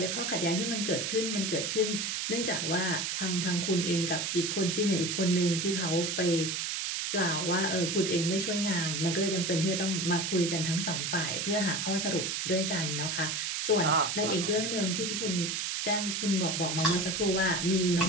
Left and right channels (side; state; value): right; noise; hiss, 1 dB below the sound